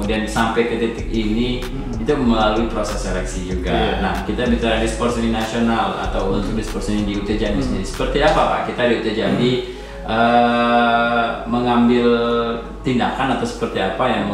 sampai ke titik ini itu itu melalui proses seleksi juga. Nah, kita bicara di sport seni nasional atau untuk di sport seni di UT Jambi sendiri, seperti apa Pak? Kita di UT Jambi mengambil tindakan atau seperti apa yang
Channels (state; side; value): identical; both; correlation 1.00